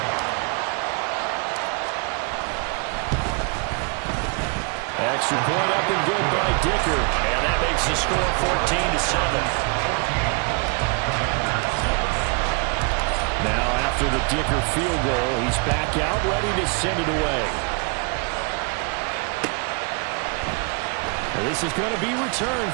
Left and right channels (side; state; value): left; quieter; 34.6 dB